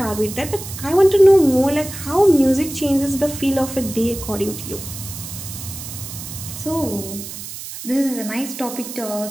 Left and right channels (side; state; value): right; noise; hiss, 10 dB below the sound